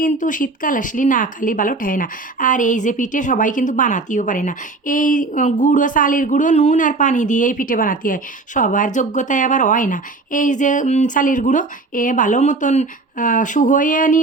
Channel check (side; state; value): left; quieter; 3.5 dB